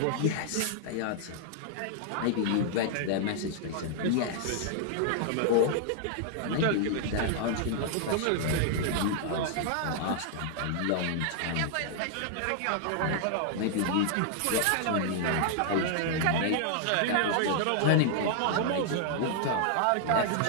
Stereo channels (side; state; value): both; different; correlation 0.00